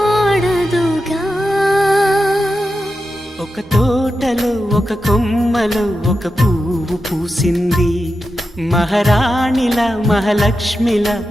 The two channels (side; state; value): both; normal; correlation 0.90